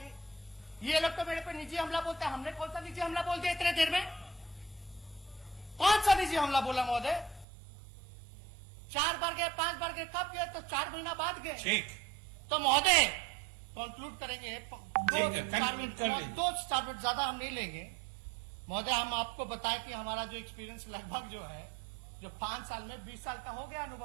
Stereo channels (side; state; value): left; drops out; at 7.5 s